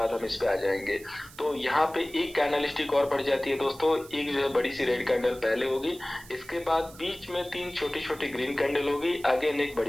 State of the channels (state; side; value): noise; right; hiss, 20 dB below the sound